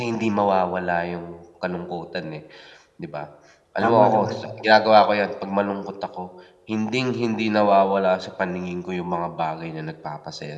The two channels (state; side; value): identical; both; correlation 1.00